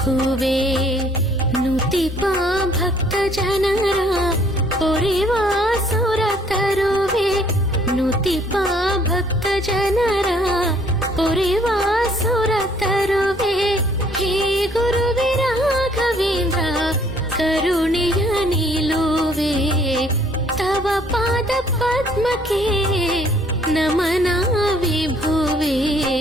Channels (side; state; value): both; normal; correlation 0.61